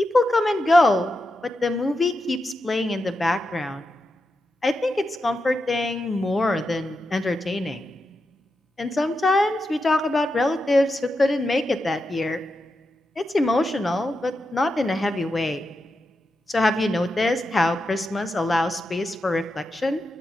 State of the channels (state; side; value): normal; both; correlation 0.88